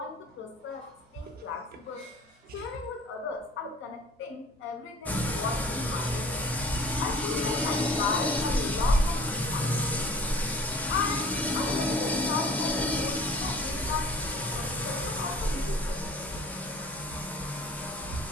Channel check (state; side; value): normal; both; correlation 0.48